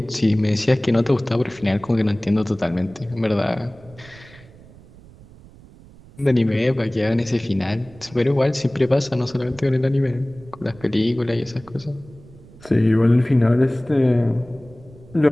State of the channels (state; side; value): noise; right; rumble, 23 dB below the sound